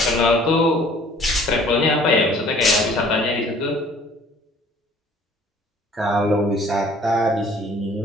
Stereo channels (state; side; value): normal; both; correlation 0.54